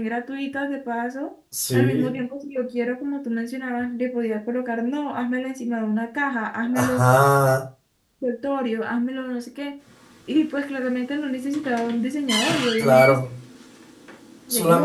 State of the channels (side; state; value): both; identical; correlation 1.00